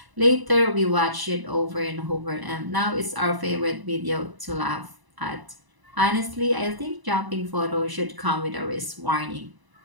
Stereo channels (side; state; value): left; late; 1.0 ms